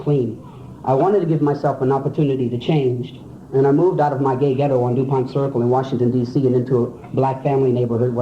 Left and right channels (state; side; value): identical; both; correlation 1.00